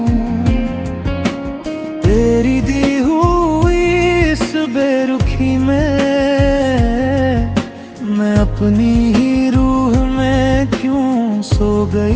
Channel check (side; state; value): both; identical; correlation 1.00